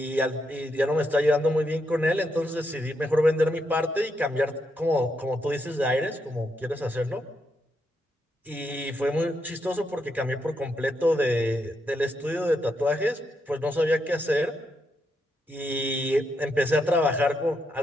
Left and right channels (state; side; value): normal; both; correlation 0.81